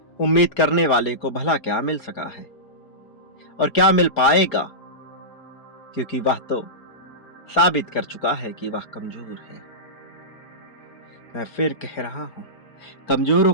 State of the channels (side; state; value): right; late; 4.3 ms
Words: उम्मीद करने वाले को भला क्या मिल सका है और क्या मिल पाएगा, क्योंकि वह तो साबित कर चुका है कि वह कमजोर है। मैं फिर कह रहा हूं, कमजोरों